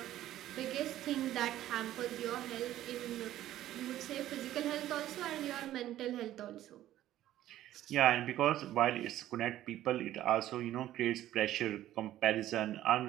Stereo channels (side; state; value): left; quieter; 13.4 dB